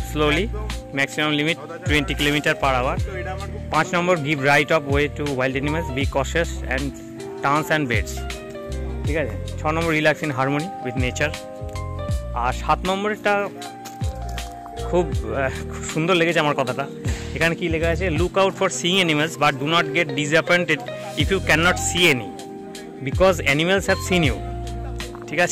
slowly, maximum limit 20 km/h। 5 নম্বর give right of way to wild animals, be cautious and turns and beds. ঠিক আছে। 6 number relax in harmony with nature. আর 7 নম্বরটা খুব সুন্দর লেগেছে আমার কথাটা। এখানে কি লেখা আছে, look out for seeing animals but do not get disappointed if you can not see any because animals have seen you. ঠিক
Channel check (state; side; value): identical; both; correlation 1.00